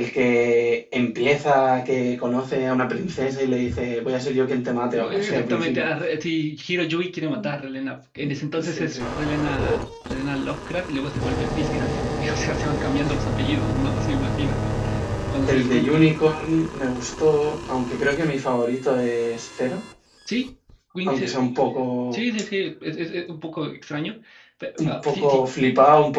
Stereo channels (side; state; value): both; identical; correlation 1.00